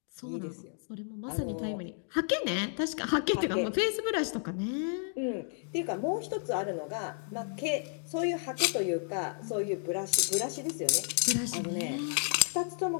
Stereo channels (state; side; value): silent; right; 56 dB below the other